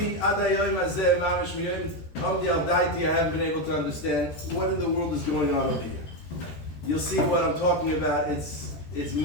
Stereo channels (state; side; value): late; right; 13 ms